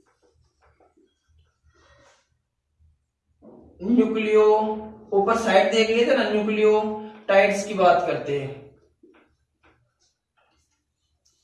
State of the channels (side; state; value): both; identical; correlation 1.00